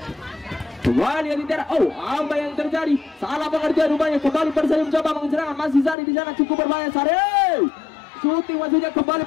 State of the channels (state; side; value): drops out; right; at 6.0 s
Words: Kembali Adi Tiara. Oh, apa yang terjadi? Salah pengertian rupanya. Kembali Forseri mencoba mengeserangkan. Masih Sari di sana, cukup berbahaya. Sari shooting maksudnya. Kembali